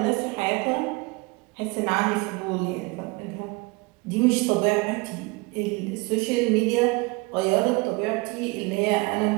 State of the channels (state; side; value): quieter; left; 26.1 dB